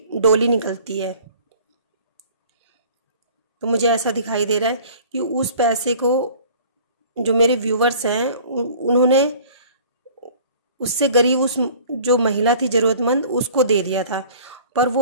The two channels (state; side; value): inverted; both; correlation -0.48